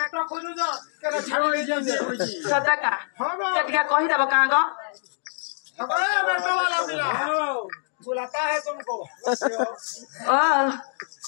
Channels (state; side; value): silent; right; digital silence